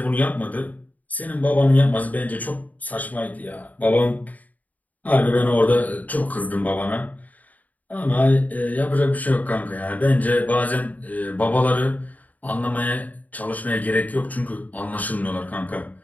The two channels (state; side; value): late; right; 0.076 ms